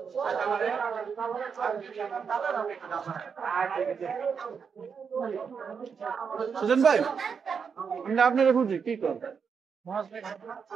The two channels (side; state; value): left; quieter; 6.3 dB